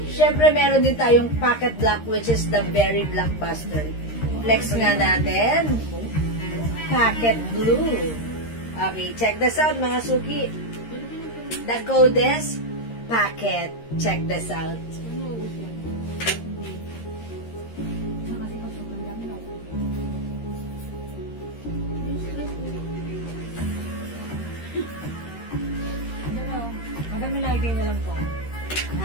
Siyempre, meron din tayong pocket black, which is the very blockbuster. Flex nga natin. Pocket blue. Okay, check this out, mga suki. The code is pocket. Check this out. Madami na idea na lang po.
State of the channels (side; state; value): right; late; 13 ms